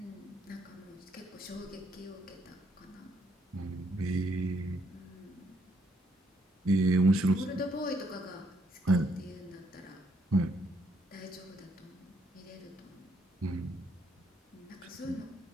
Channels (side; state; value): both; normal; correlation 0.72